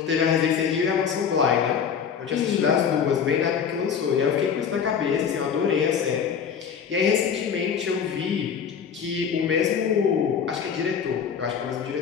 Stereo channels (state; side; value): quieter; right; 7.2 dB